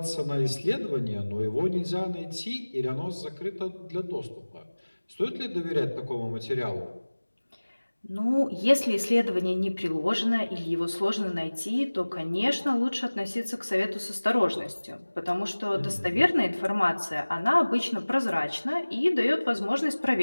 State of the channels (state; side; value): inverted; both; correlation -1.00